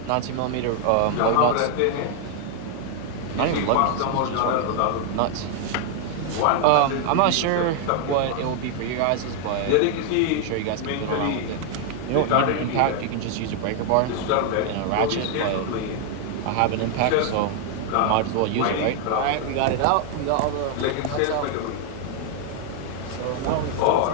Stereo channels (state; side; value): different; both; correlation 0.00